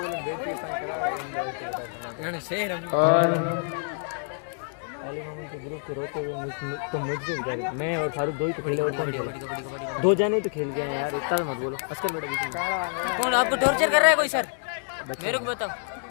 और अली मोहम्मद के ग्रुप के रोते हुए तो मुझे मैं और फारूक 2 ही तो खेले और कौन खेला? 2 जने तो खेल गए हैं यार, इतना मत बोलो। अस्कर बेटा बीच में कौन आपको टॉर्चर कर रहा है? कोई सर मेरे को बताओ।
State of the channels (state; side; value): silent; right; 60 dB below the other